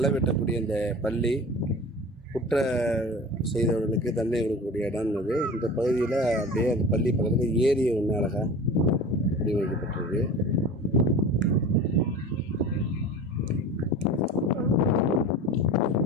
வெட்டக்கூடிய இந்த பள்ளி குற்ற செய்தவர்களுக்கு தண்டனை கொடுக்கக்கூடிய இடம் இது. இந்த பகுதியில் அப்படியே அந்த பள்ளி பக்கத்தில் ஏரி ஒன்று அழகாக வடிவமைக்கப்பட்டிருக்கு.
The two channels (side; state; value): both; normal; correlation 0.36